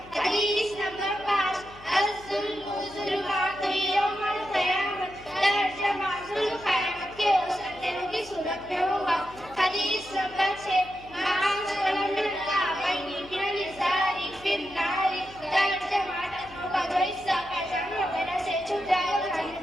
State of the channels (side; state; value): left; noise; hum, 21 dB below the sound